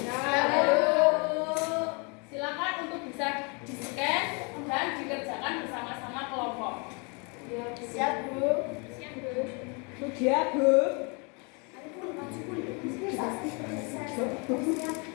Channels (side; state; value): right; quieter; 32.7 dB